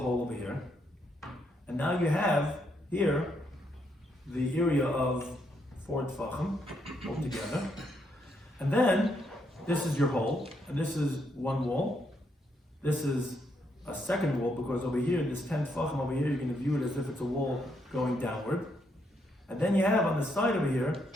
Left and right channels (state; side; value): normal; both; correlation 0.76